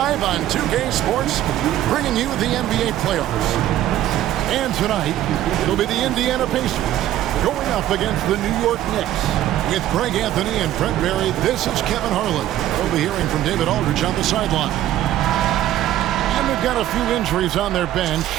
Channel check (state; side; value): quieter; left; 13.0 dB